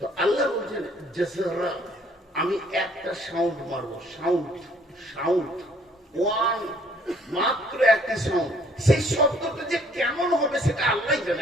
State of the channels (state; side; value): normal; both; correlation 0.61